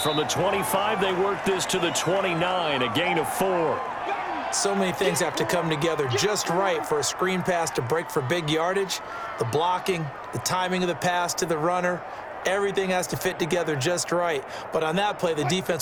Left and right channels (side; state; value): both; identical; correlation 1.00